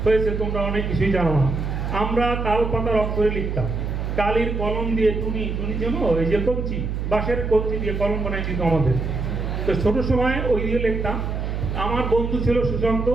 হয়েছে, তোমরা অনেক কিছুই জানো না। আমরা তাল পাতার অক্ষরে লিখতাম, কালির কলম দিয়ে টুনি যেন এই যে কঞ্চি, বাঁশের কঞ্চি দিয়ে কলম বানাই দিত আমাদের। তো ছোট সময় ওই দিয়ে লিখতাম। আমার বন্ধু ছিল সুশান্ত,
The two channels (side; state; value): right; noise; hum, 3 dB below the sound